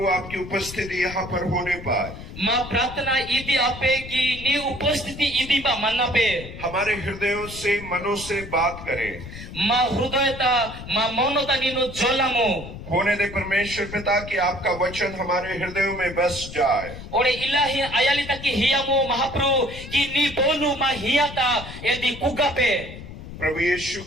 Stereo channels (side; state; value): left; noise; rumble, 12 dB below the sound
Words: आपकी उपस्थिति यहाँ पर होने पर माँ प्रार्थना इदी आपे की नी उपस्थिति इदी बा मन्ना पे हमारे हृदयों से मनों से बात करें। माँ हृदयता माँ मौनता नीनु जोलामो होने दे परमेश्वर पिता कि आपका वचन हमारे हृदयों में बस जाए। ओरे इलाही आयालिता की हियामो महाप्रभु की नी बोलू माँ हियाता यदि कुगा पे प्रभु यीशु